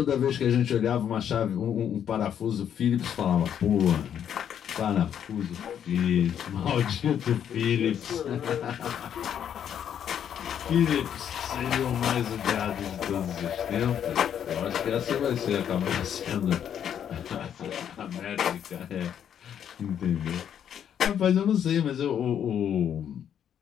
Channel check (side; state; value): right; quieter; 9.1 dB